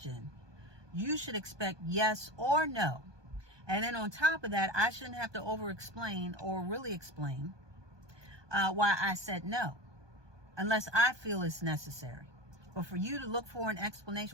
you should expect yes or no. And then on top of that, I shouldn't have to over explain or really explain why I said no, unless I feel it's necessary. But for you to look for an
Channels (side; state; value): left; late; 1.2 ms